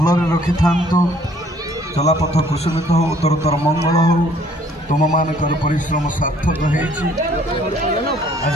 रखि थांतु चलापथ कुसुमित हो उत्तरोत्तर मंगल हो तुम मानकर परिश्रम सार्थक होइछि आज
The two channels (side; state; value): both; normal; correlation 0.60